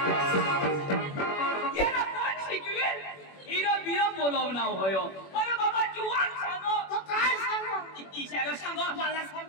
येरा कोण शिकवेल हिरो बिरो बोलवना होयो अरे बाबा जुवान सांगो तो काय सांगू ईशाला सांगो मला सांग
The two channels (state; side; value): late; right; 21 ms